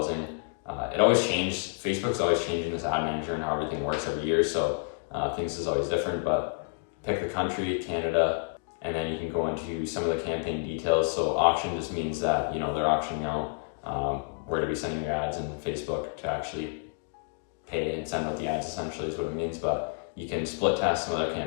It always changes. Facebook's always changing this ad manager and how everything works every year, so things is always different, but pick the country, Canada, and then you can go into some of the campaign details. So auction just means that, they're auctioning out where to be sending your ads, and Facebook to actually pay and send out the ads, essentially is what it means. But you can split test some other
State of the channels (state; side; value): silent; right; 58 dB below the other